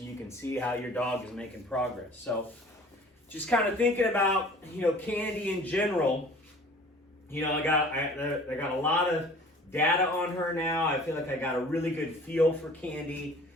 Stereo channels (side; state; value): both; normal; correlation 0.48